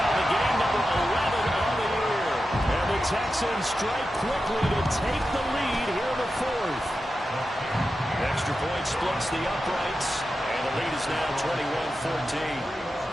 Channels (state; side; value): normal; both; correlation 0.91